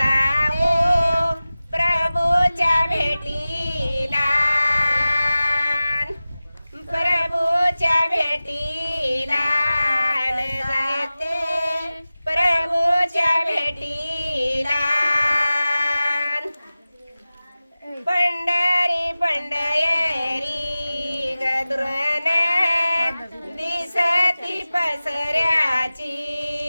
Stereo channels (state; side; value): inverted; both; correlation -0.96